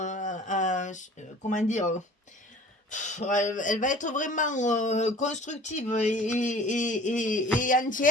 comment dire, elle va être vraiment constructive et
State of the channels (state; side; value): normal; both; correlation 0.46